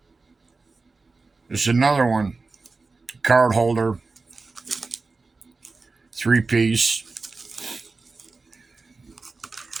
This is another one, card holder, 3-piece.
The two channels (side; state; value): left; quieter; 3.9 dB